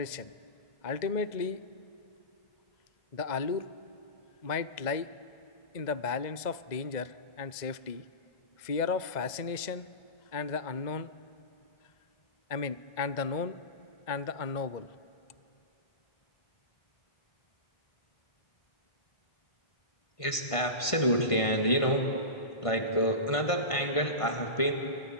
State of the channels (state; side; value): late; right; 1.5 ms